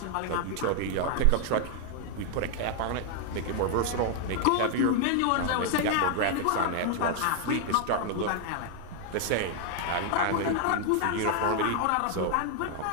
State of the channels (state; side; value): different; both; correlation 0.00